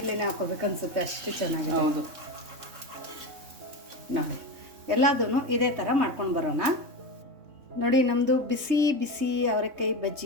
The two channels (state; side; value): late; left; 3.6 ms